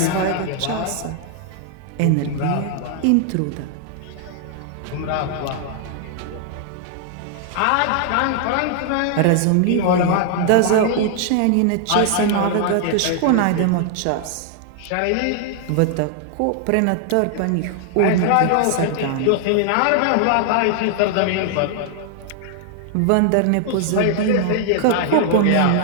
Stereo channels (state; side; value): different; both; correlation 0.00